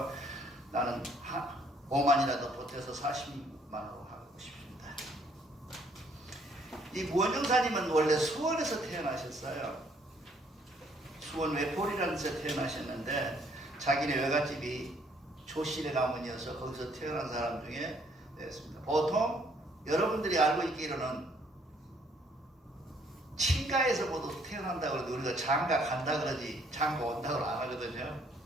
나는 5만이라도 보태서 40만으로 하고 싶습니다. 이 무원정사님은 원래 수원에서 태어나셨어요. 수원 외포리라는 데서 태어나셨는데 자기네 외갓집이 조실의 가문이어서 거기서 태어난 사람 중에 됐습니다. 보통 여러분들이 알고 있기로는 친가에서 모두 태어난다고 그러는데 우리가 장가 간다 그러지 장가 온다고 안 하거든요.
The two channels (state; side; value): normal; both; correlation 0.65